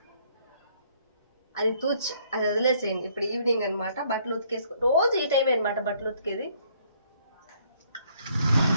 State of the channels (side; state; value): both; inverted; correlation -0.65